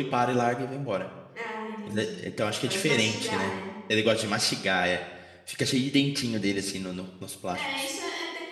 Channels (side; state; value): both; identical; correlation 1.00